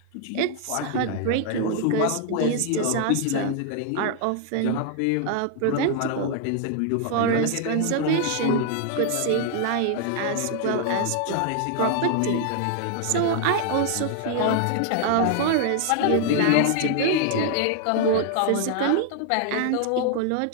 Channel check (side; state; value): both; different; correlation 0.00